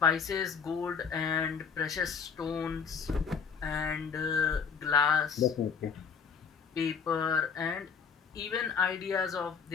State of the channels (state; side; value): quieter; right; 6.3 dB